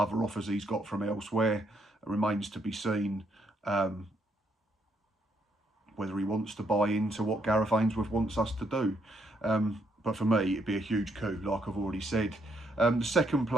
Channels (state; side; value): normal; both; correlation 0.74